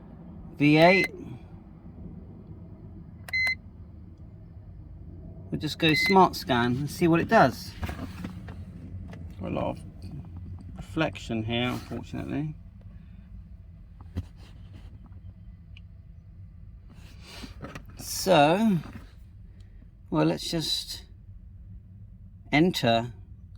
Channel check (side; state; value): both; identical; correlation 1.00